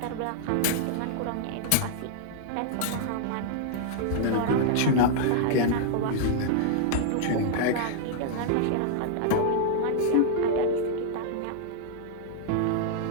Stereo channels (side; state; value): both; different; correlation -0.01